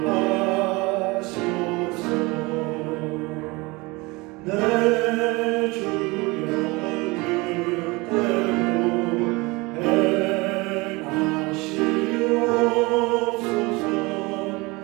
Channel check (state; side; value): quieter; left; 24.6 dB